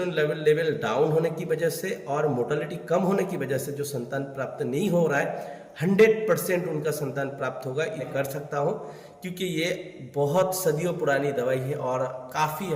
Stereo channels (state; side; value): identical; both; correlation 1.00